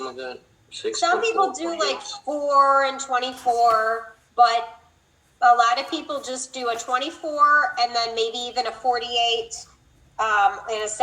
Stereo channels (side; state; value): both; identical; correlation 1.00